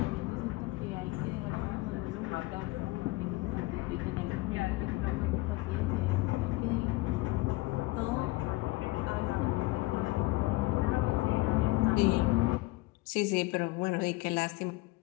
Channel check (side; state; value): right; quieter; 21.1 dB